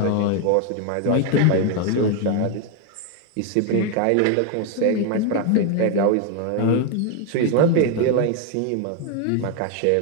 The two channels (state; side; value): different; both; correlation 0.01